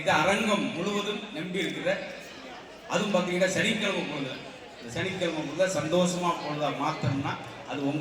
அரங்கம் முழுவதும் நம்பி இருக்கிற, அதுவும் பார்த்தீங்கன்னா சனிக்கிழமை பொழுது, இந்த சனிக்கிழமை பொழுது சந்தோஷமா பொழுதா மாற்றணும்னா அது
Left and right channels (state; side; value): identical; both; correlation 1.00